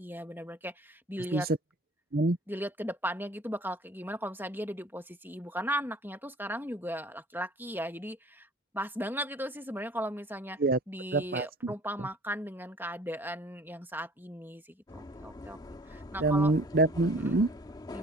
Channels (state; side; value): normal; both; correlation 0.50